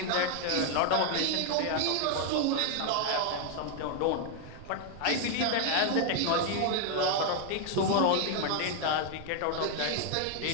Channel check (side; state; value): both; different; correlation 0.00